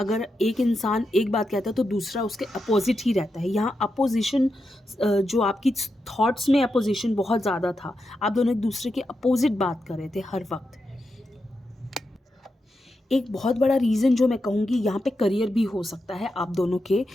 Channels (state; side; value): normal; both; correlation 0.87